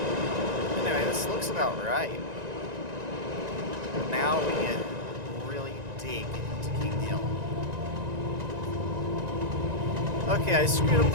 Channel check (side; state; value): left; late; 1.9 ms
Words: Anyway, this looks about right. Now we really dig into King Hill. Okay, I screwed up